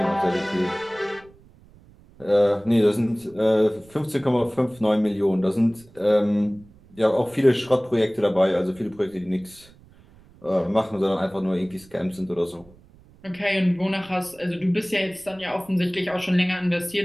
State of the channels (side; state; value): right; noise; rumble, 26 dB below the sound